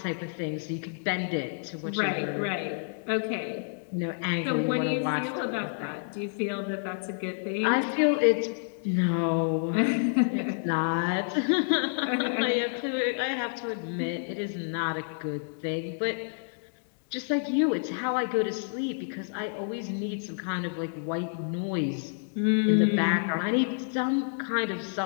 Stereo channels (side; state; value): right; silent; digital silence